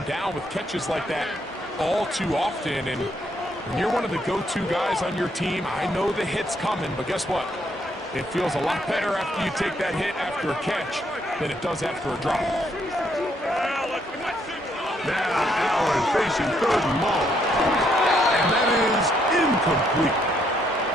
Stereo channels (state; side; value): normal; both; correlation 0.72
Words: down with catches like that all too often. And when you're one of the go-to guys on your team, I know the hit's coming, but guess what? It feels a lot better after you take that hit after a catch than it does after a drop. Now Allen facing 3rd and long. And that is incomplete.